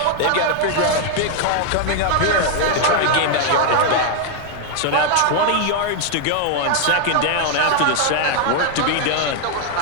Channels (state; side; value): different; both; correlation 0.00